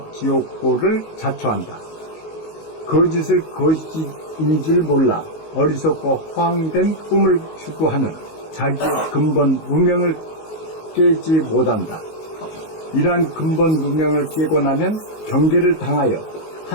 지옥고를 자초한다. 거짓을 거짓인 줄 몰라 어리석고 허황된 꿈을 추구하는 자기의 근본 무명을 깨지 못한다. 이러한 근본 무명을 깨고 나면 경계를 당하여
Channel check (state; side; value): late; right; 19 ms